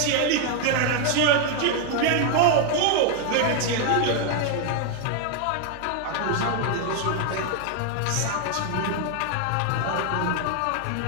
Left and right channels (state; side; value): different; both; correlation 0.00